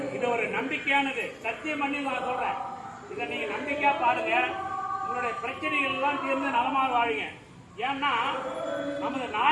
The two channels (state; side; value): identical; both; correlation 1.00